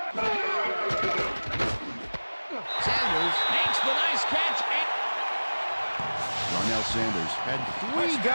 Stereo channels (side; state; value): both; inverted; correlation -1.00